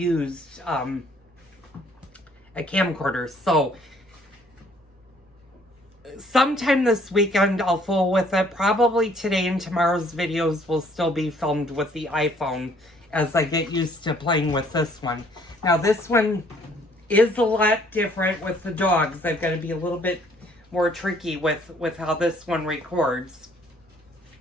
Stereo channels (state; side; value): normal; both; correlation 0.61